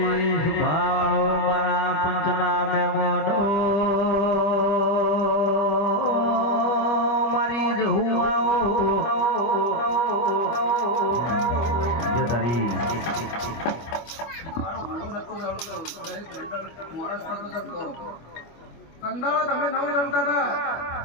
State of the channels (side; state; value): right; late; 25 ms